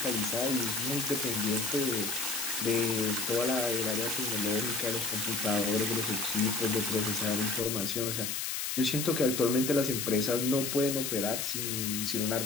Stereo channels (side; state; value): left; noise; hiss, 2 dB below the sound